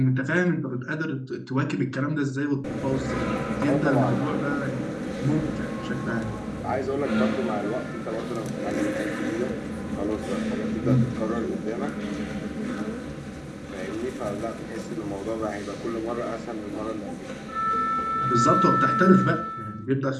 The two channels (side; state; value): both; identical; correlation 1.00